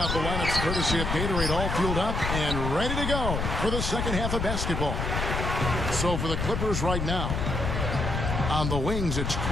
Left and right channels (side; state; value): left; noise; rumble, 2 dB below the sound